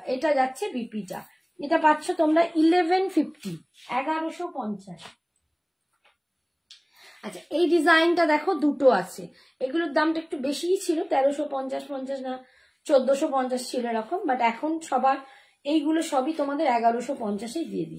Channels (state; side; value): identical; both; correlation 1.00